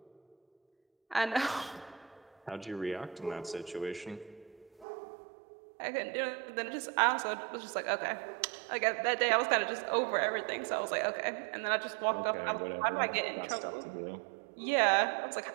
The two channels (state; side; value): drops out; left; at 4.9 s